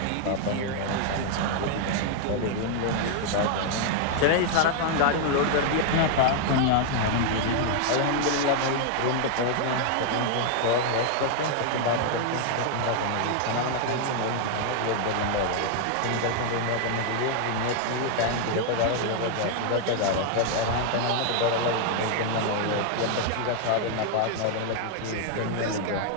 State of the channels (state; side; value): different; both; correlation 0.00